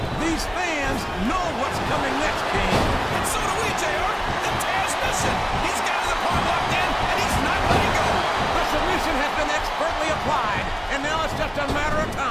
These fans know what's coming next, King. And so do we, JR. The Taz mission. He's got his opponent locked in, and he's not letting go. The submission has been expertly applied, and now it's just a matter of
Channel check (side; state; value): both; identical; correlation 1.00